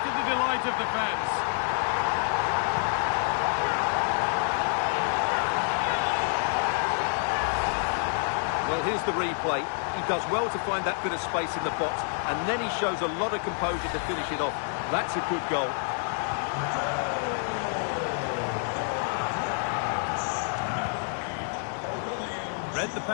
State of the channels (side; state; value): right; silent; 59 dB below the other